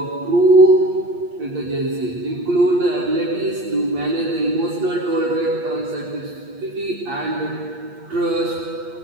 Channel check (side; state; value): left; late; 8.5 ms